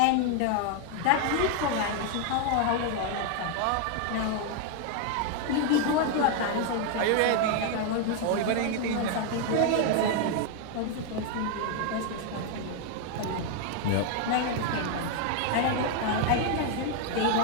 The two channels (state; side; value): different; both; correlation 0.00